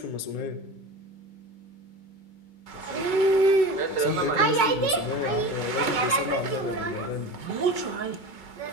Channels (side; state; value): right; late; 2.2 ms